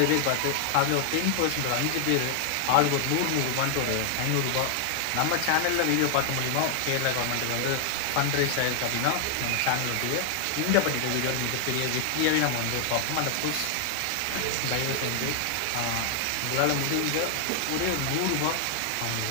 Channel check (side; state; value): both; different; correlation 0.00